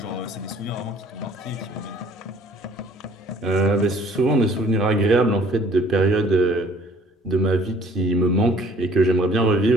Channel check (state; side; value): normal; both; correlation 0.55